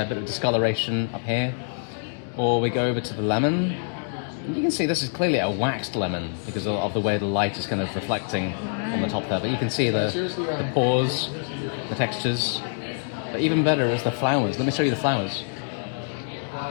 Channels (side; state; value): right; silent; digital silence